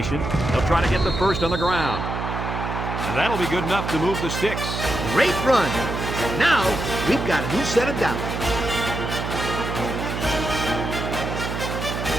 They'll try to get the first on the ground. And that'll be good enough to move the sticks. Great run. And now we've got a new set of downs.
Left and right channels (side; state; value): right; noise; hum, 4 dB below the sound